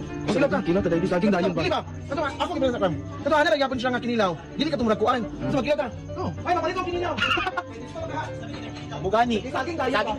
Kinilaw ka. Kilo taday saging dayon ba? Dili ba? Kato, ako gibala sa kam. Kato, ana gyapon siya nga kinilaw. Dili ka tumulakuan. So, magkilaw ka. Oh, ay, mapalit ko kinilaw. Bugani. Saging dayon. Saging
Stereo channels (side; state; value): both; identical; correlation 1.00